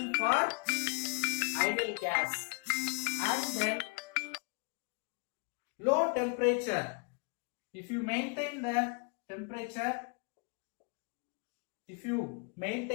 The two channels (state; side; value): quieter; right; 34.1 dB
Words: for ideal gas. And then low temperature. If you maintain the temperature, if you